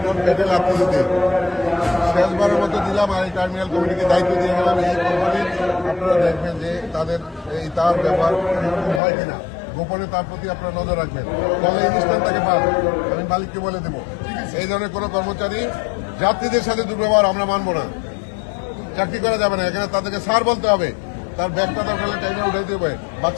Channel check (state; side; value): drops out; right; at 9.0 s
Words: পেটে লাগতে দিতে। শেষবারের মতো দিলাম, আর এই টার্মিনাল কমিটিকে দায়িত্ব দিয়ে গেলাম। এই কোম্পানির আপনারা দেখবেন যে তাদের এই তার ব্যাপার হয় কিনা, গোপনে তার প্রতি আপনারা নজর রাখবেন, ফলে এই স্থানটাকে পান। আমি মালিককে বলে দেবো, এই ধরনের কোনো কর্মচারী যাত্রীদের সাথে দুর্ব্যবহার আমরা মানবো না, চাকরি করা যাবে না। এখানে তাদেরকে স্যার বলতে হবে, তার ব্যাগটা দরকার হলে টাইমে উঠাইতে হবে,